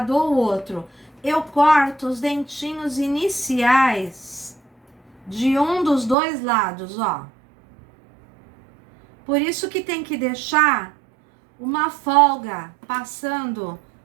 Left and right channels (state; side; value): drops out; left; at 6.2 s